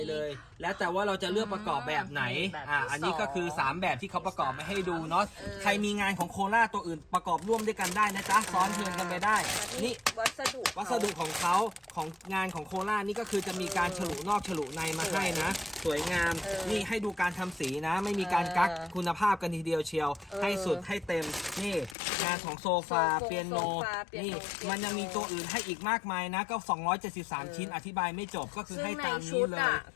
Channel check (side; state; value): right; drops out; at 22.0 s